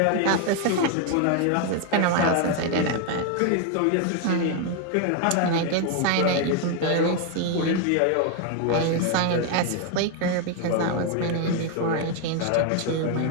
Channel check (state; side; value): different; both; correlation 0.01